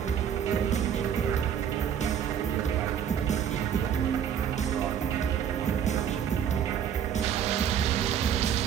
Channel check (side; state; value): left; quieter; 8.7 dB